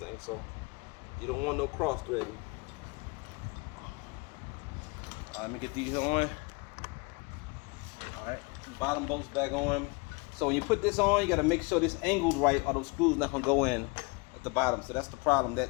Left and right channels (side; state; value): right; quieter; 28.5 dB